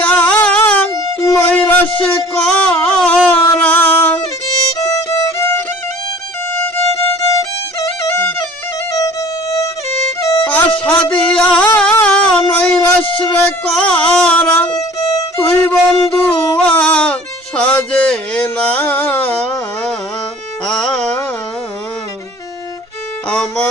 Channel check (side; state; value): both; normal; correlation 0.49